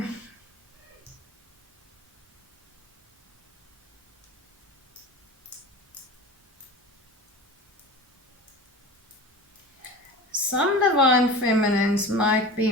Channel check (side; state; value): both; normal; correlation 0.34